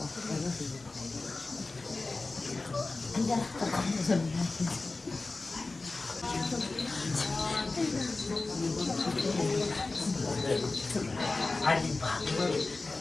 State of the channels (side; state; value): right; quieter; 3.5 dB